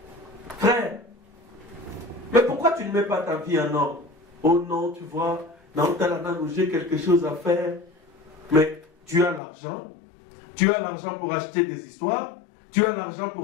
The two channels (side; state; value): right; drops out; at 9.4 s